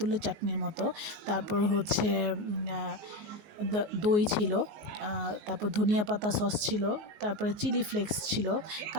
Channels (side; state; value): left; late; 19 ms